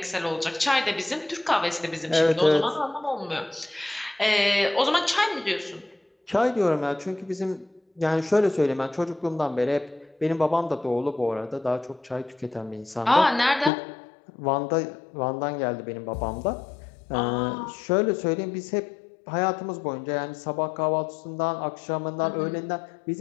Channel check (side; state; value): right; drops out; at 13.7 s